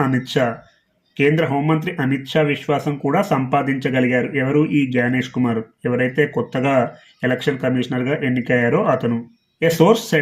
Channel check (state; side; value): identical; both; correlation 1.00